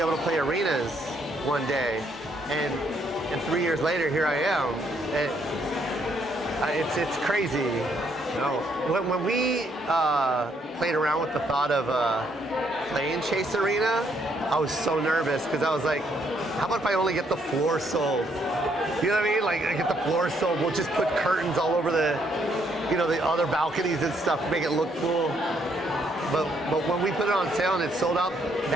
to play arenas one day, and 3 years later, here I am. It's crazy. You know, when we played around with the thought of playing Chase Arena, I was so nervous because I was like, how about if I only get the floor sold? You know what I mean? Like, I get the floor sold. We'll just put curtains all over the, you know, the other balconies and stuff to make it look cool. But when we put it on sale and it sold out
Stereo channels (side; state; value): both; normal; correlation 0.71